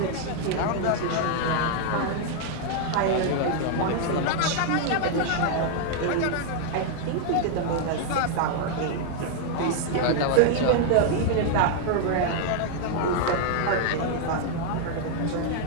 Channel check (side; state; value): both; different; correlation 0.00